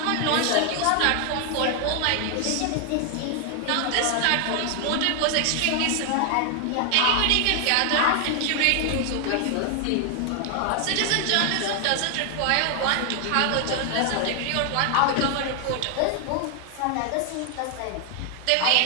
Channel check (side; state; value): both; different; correlation 0.00